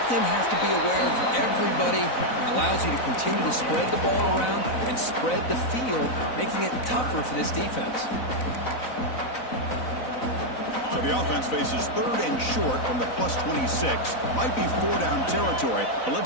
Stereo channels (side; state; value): right; late; 4.0 ms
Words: them have to be aware of everybody, and allows you to continue to spread the ball around and spread the field, making it tougher for this defense. So the offense faces 3rd and short from the +26. Might be 4-down territory, but